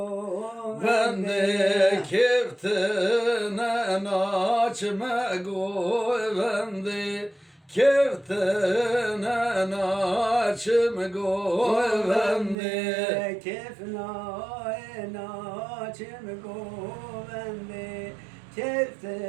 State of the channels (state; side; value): drops out; left; at 12.6 s